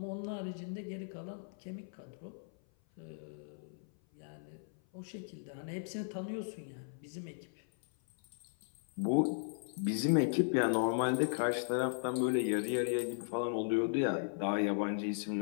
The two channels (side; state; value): right; silent; 53 dB below the other